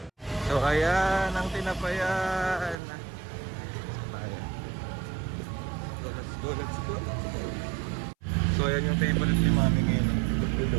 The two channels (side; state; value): left; drops out; at 2.8 s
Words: So, ayan, ang Tinapayan. So, let's go. So, ayan yung favorite ni Mami ngayon.